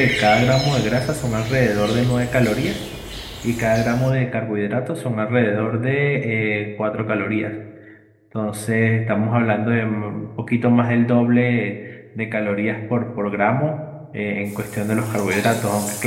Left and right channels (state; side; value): identical; both; correlation 1.00